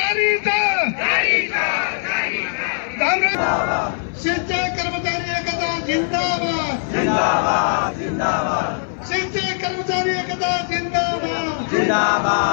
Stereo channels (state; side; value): silent; right; 57 dB below the other